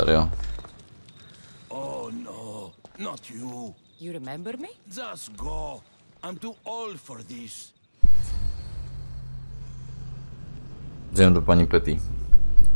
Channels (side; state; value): both; inverted; correlation -1.00